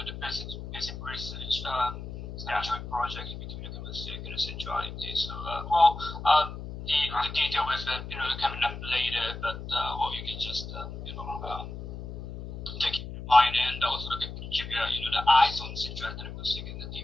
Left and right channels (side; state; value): left; noise; hum, 9 dB below the sound